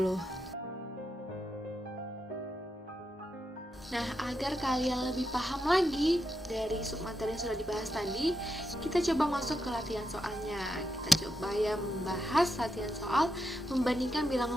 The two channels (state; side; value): normal; both; correlation 0.84